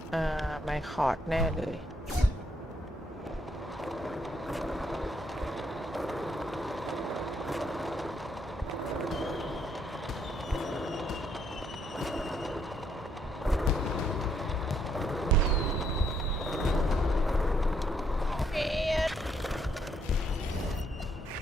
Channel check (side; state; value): both; normal; correlation 0.72